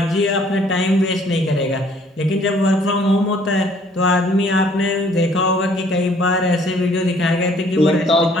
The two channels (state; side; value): normal; both; correlation 0.60